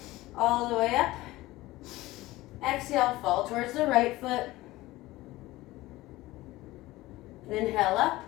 all the way up. Exhale, fall towards the right foot. Inhale up.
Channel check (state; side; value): quieter; right; 18.3 dB